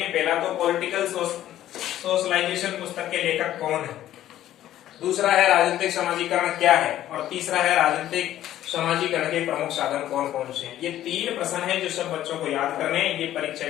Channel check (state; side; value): quieter; right; 12.8 dB